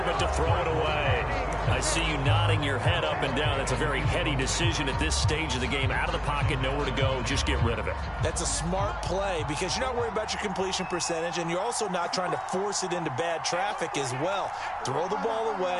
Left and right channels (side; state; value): both; identical; correlation 1.00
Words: but to throw it away. I see you nodding your head up and down. That's a very heady decision at this stage of the game. Out of the pocket, nowhere to go. Just get rid of it. That's a smart play because you're not worried about your completion percentage, and you're also not trying to force it into bad traffic as well. Throw the ball